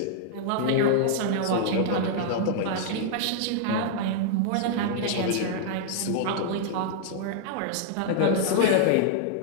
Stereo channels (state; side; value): different; both; correlation -0.01